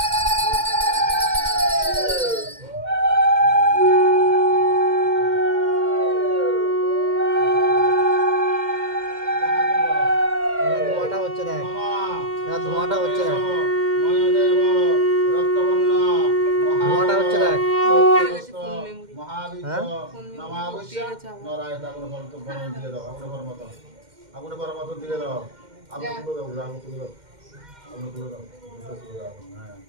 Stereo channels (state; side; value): late; left; 2.1 ms